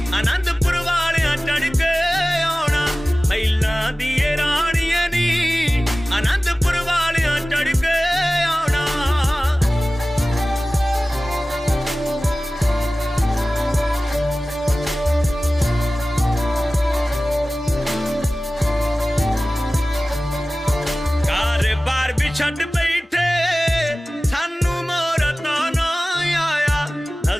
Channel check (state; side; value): normal; both; correlation 0.97